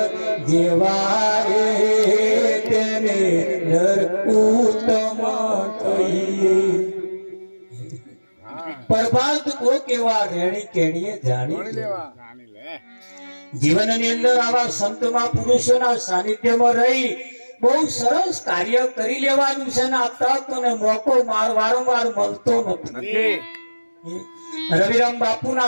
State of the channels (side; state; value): both; inverted; correlation -1.00